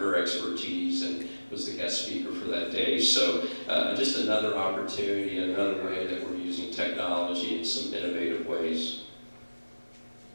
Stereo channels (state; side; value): inverted; both; correlation -1.00